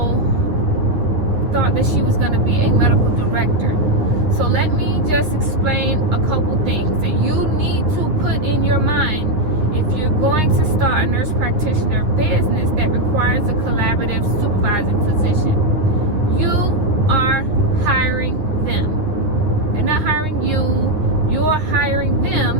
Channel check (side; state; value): left; late; 9.8 ms